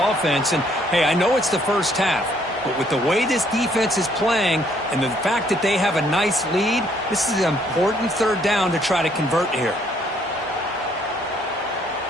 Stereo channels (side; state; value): both; normal; correlation 0.66